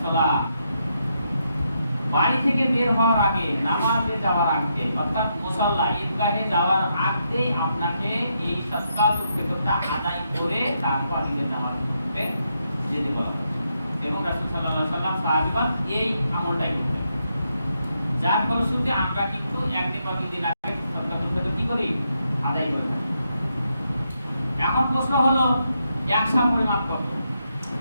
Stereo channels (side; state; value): both; inverted; correlation -0.80